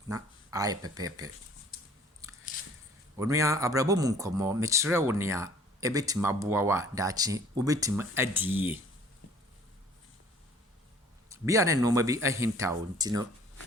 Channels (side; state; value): both; normal; correlation 0.53